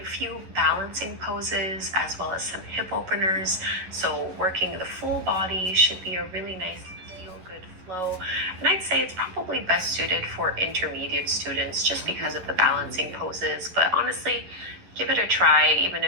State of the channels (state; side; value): late; left; 11 ms